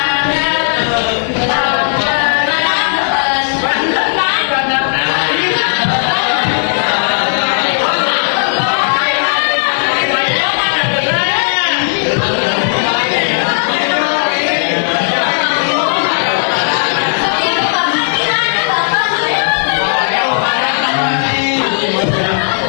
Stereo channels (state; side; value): silent; right; digital silence